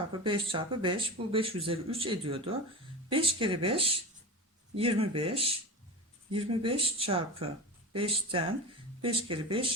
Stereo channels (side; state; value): both; normal; correlation 0.27